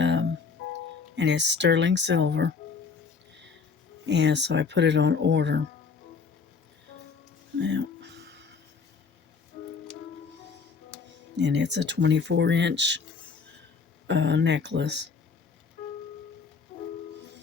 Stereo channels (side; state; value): right; quieter; 5.2 dB